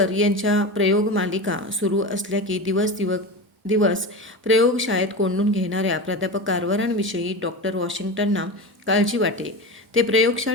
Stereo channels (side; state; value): both; normal; correlation 0.25